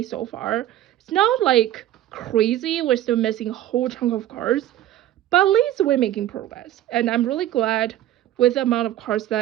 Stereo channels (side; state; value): left; quieter; 13.2 dB